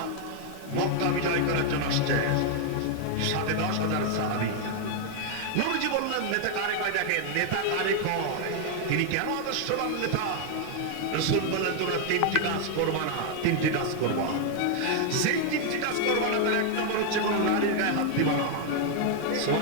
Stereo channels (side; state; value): both; different; correlation 0.00